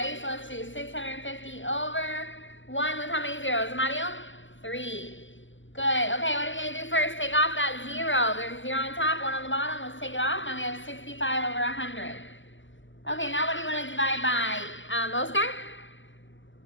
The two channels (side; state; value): right; late; 0.55 ms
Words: So let's do 650 over 1 with how many zeros? Mario? 3. Good. Okay, what are we going to do first? Take off that 0. There's a 0 on top, 1 on the bottom. Let's take it off. Now we have 65 over 100. Okay, now what do you want to divide by? Oscar?